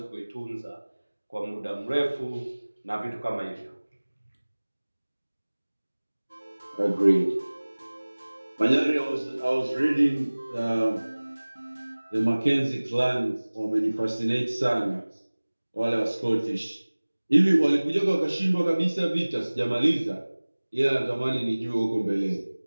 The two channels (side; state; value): both; inverted; correlation -1.00